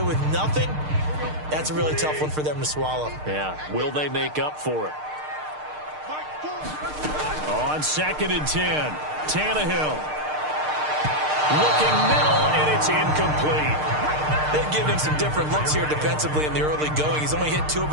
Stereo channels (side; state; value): left; late; 6.6 ms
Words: with nothing, that's a really tough one for them to swallow. Yeah, will they make up for it? On 2nd and 10. Tannehill. Looking middle, and it's incomplete. They've given him some different looks here defensively in the early going. He's only hit 2 of